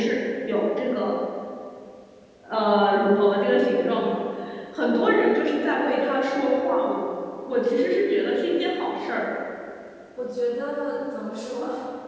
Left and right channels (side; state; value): both; identical; correlation 1.00